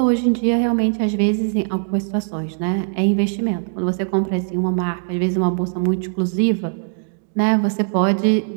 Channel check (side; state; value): left; silent; digital silence